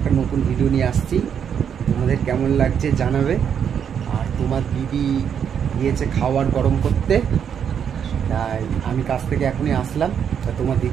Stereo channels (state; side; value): quieter; left; 8.0 dB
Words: নতুন ভিডিও নিয়ে আসছি। তোমাদের কেমন লাগছে জানাবে। আর তোমার দিদি গিয়েছে খাবার গরম করতে, তাই আমি কাছ থেকে এখনই আসলাম। তা তোমার